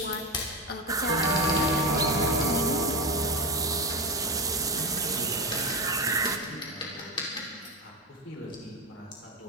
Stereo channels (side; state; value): both; normal; correlation 0.17